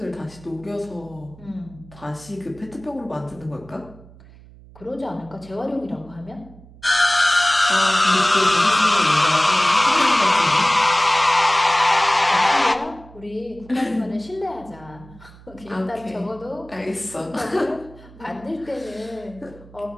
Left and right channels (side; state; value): right; noise; hum, 22 dB below the sound